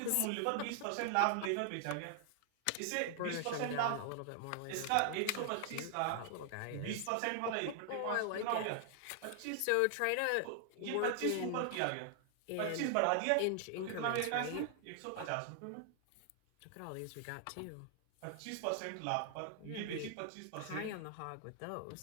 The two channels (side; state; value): both; different; correlation 0.00